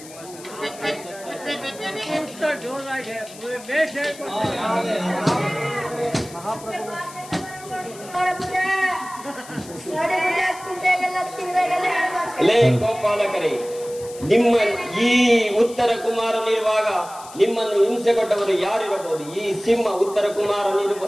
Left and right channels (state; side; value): noise; left; hiss, 18 dB below the sound